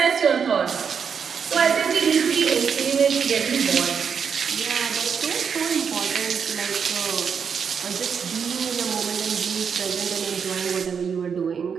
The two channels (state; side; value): quieter; left; 6.7 dB